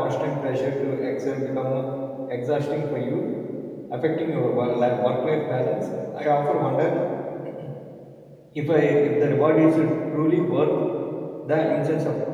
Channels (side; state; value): both; identical; correlation 1.00